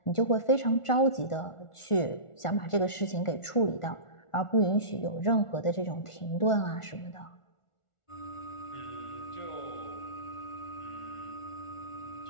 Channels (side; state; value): right; late; 1.4 ms